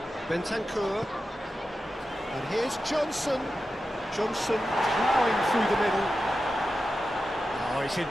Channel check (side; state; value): both; normal; correlation 0.92